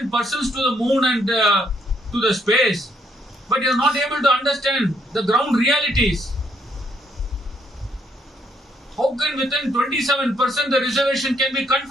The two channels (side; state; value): both; normal; correlation 0.71